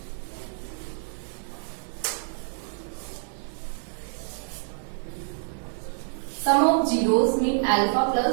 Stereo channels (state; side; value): silent; left; 60 dB below the other